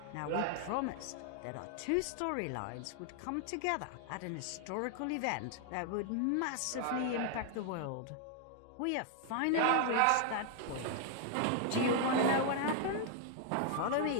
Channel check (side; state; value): both; different; correlation 0.00